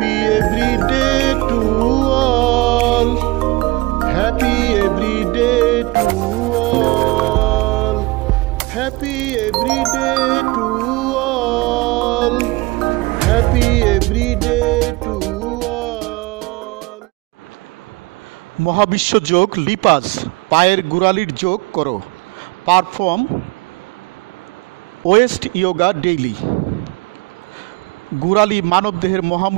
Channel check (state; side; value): quieter; left; 22.8 dB